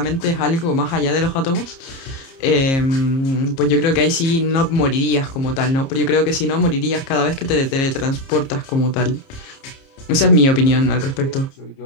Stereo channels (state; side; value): late; right; 30 ms